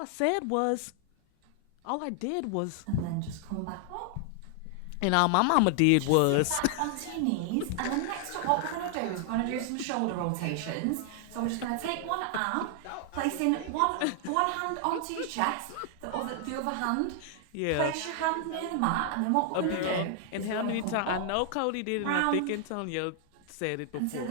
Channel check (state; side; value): different; both; correlation 0.00